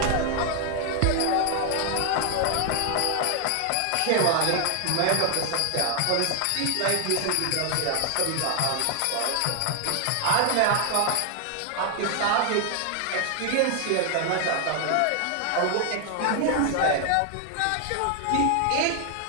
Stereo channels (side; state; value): both; different; correlation 0.00